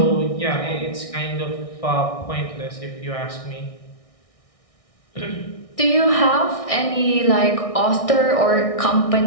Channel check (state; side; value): late; right; 1.6 ms